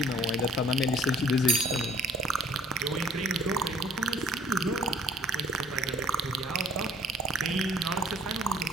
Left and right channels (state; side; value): normal; both; correlation 0.56